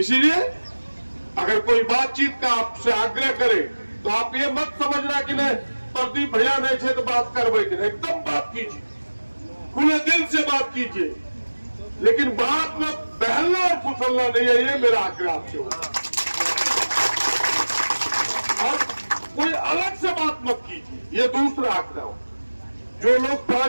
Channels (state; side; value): inverted; both; correlation -1.00